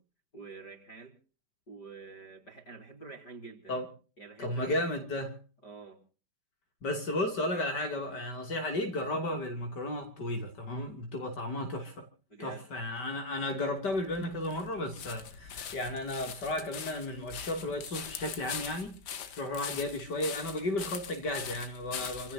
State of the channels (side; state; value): right; late; 5.1 ms